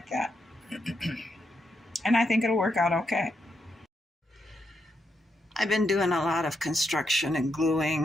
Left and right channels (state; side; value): normal; both; correlation 0.81